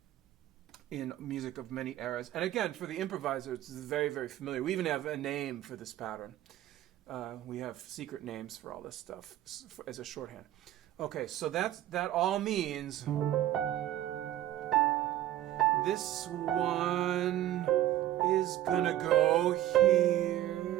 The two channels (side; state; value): left; quieter; 13.3 dB